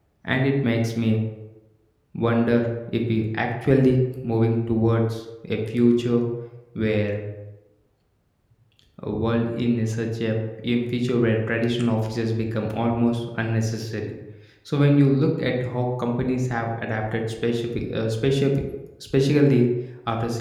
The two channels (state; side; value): identical; both; correlation 1.00